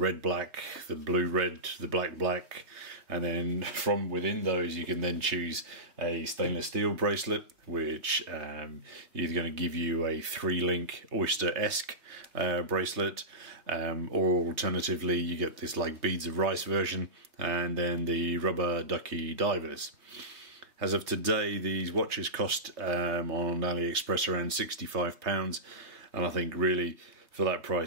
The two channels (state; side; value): late; left; 3.3 ms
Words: black, the blue red, the black black, and then from within those you can then choose a stainless steel bracelet, which either going to give you a 3-link oyster-esque bracelet, or alternatively you get this like beads of rice version, and then the rubber ducky divers. As of today, these watches cost on AliExpress around £65, and I think really for that